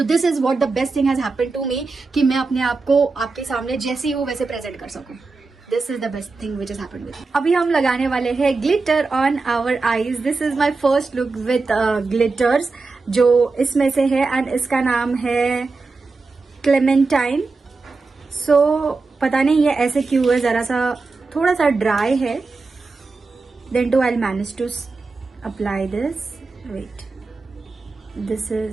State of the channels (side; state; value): left; quieter; 4.0 dB